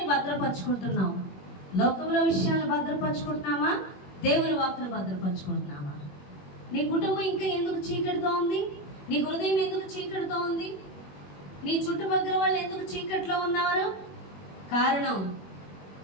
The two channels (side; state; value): right; late; 21 ms